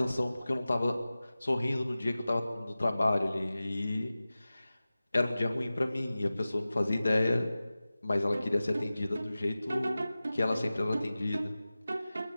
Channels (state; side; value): inverted; both; correlation -0.96